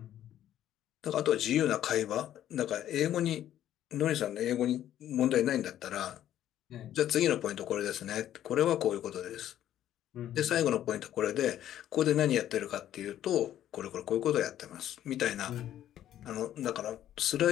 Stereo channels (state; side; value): quieter; right; 11.7 dB